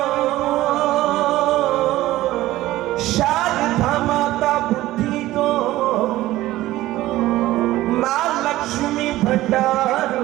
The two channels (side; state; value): left; quieter; 16.2 dB